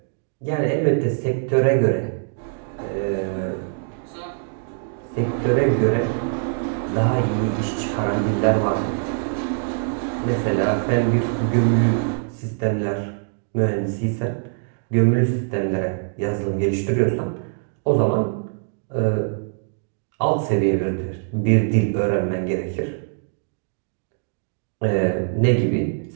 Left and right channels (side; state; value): left; silent; digital silence